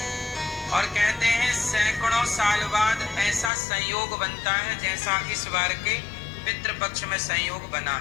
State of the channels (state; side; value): drops out; right; at 3.5 s